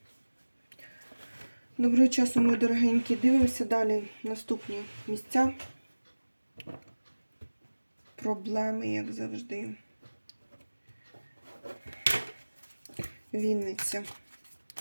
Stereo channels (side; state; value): both; inverted; correlation -1.00